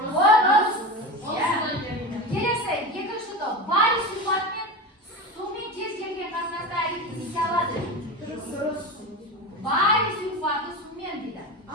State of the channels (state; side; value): normal; both; correlation 0.25